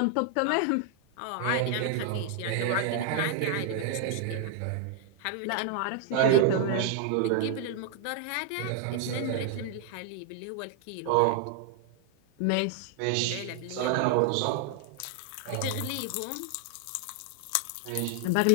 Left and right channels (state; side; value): different; both; correlation 0.00